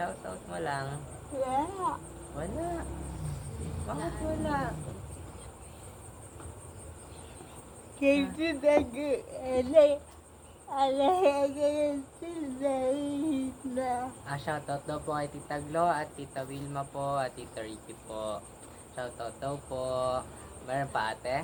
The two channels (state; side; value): identical; both; correlation 1.00